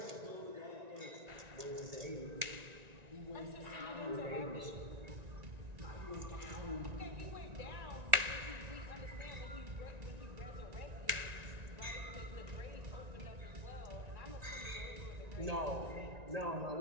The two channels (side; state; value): left; late; 1.9 ms